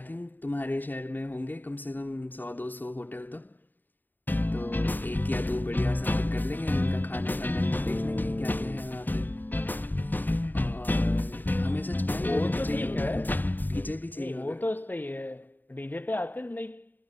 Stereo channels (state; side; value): late; right; 0.089 ms